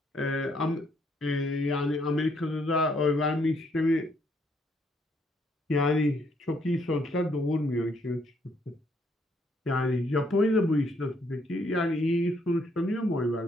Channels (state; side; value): normal; both; correlation 0.70